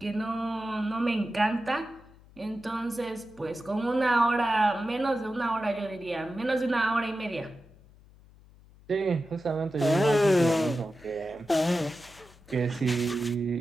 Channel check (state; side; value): noise; left; hum, 25 dB below the sound